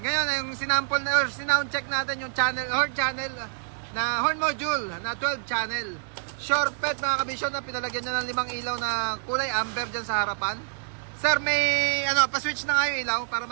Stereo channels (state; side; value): silent; left; digital silence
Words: Ngayon, yung sinample na, or sinound check natin yung channel, horn channel na horn module na 12 channel. Short pet mga kabisyo na pinalagyan niya ng 5 ilaw na kulay amber dyan sa harapan. Sir, may pa-switch na nga yung ilaw para